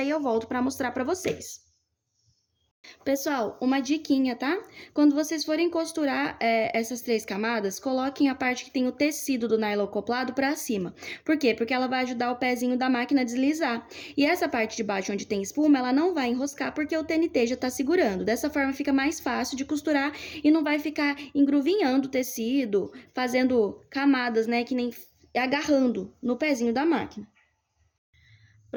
eu volto pra mostrar pra vocês. Pessoal, uma diquinha, tá? Quando vocês forem costurar essas 3 camadas, coloquem a parte que tem o tecido do nylon acoplado pra cima. Por quê? Porque ela vai ajudar o pezinho da máquina a deslizar. E essa parte de baixo onde tem espuma, ela não vai enroscar porque o TNT já tá segurando. Dessa forma fica mais fácil de costurar e não vai ficar engruvinhando o tecido, fazendo camadas, né, que nem agarrando no pezinho da máquina.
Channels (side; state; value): both; identical; correlation 1.00